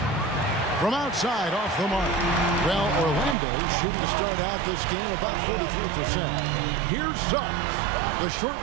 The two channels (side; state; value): left; drops out; at 3.4 s